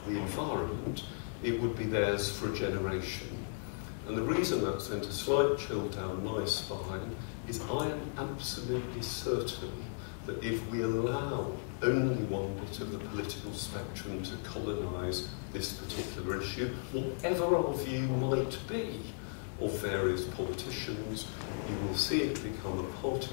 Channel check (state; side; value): silent; right; 54 dB below the other